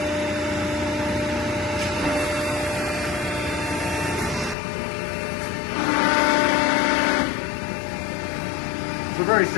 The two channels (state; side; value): drops out; right; at 4.5 s